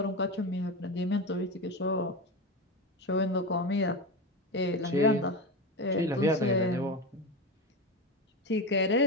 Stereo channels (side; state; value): both; normal; correlation 0.20